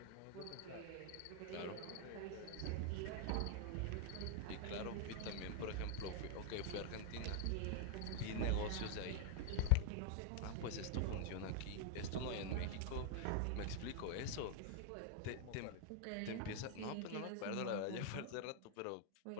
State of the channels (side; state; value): both; different; correlation 0.00